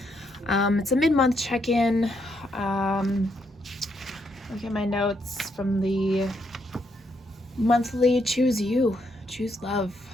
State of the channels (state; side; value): normal; both; correlation 0.76